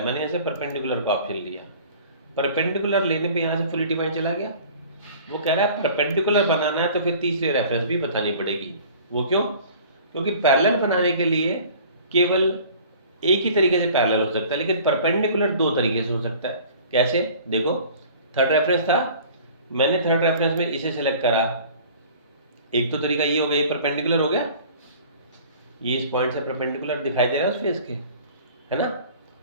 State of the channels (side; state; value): both; inverted; correlation -0.47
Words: मैंने ऐसे परपेंडिकुलर का ऑप्शन लिया। परपेंडिकुलर लेने पे यहाँ से फुली डिफाइंड चला गया। वो कह रहा है परपेंडिकुलर बनाना है तो फिर तीसरी रेफरेंस भी बतानी पड़ेगी। वो क्यों? क्योंकि पैरेलल बनाने के लिए केवल एक ही तरीके से पैरेलल हो सकता है, लेकिन परपेंडिकुलर दो तरीके से हो सकता है। कैसे? देखो, थर्ड रेफरेंस था, मैंने थर्ड रेफरेंस में इसे सेलेक्ट करा, एक तो तरीका ये हो गया, ये परपेंडिकुलर हो गया, ये इस पॉइंट से परपेंडिकुलर दिखाई दे रहा है उस फेस के, है ना।